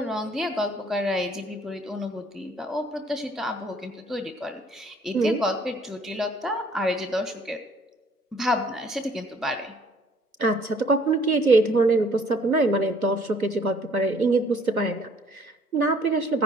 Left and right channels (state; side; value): normal; both; correlation 0.59